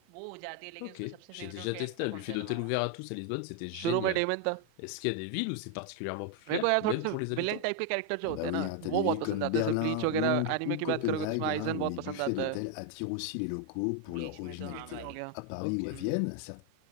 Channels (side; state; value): both; different; correlation 0.01